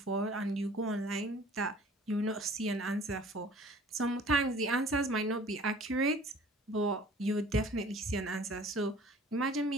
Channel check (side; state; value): both; normal; correlation 0.49